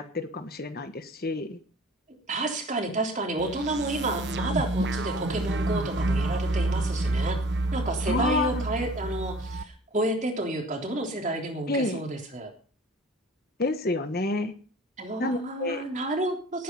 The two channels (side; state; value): both; normal; correlation 0.46